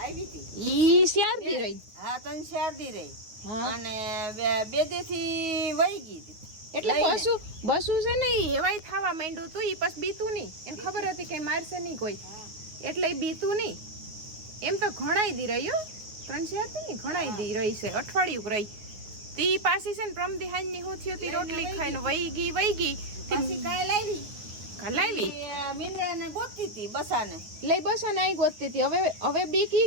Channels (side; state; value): left; late; 9.3 ms